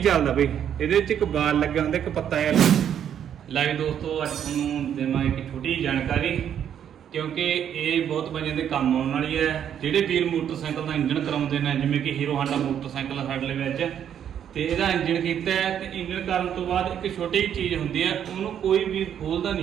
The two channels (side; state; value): left; quieter; 9.3 dB